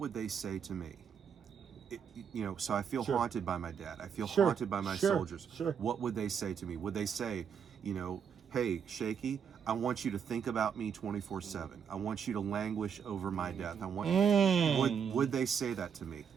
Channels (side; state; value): left; quieter; 7.3 dB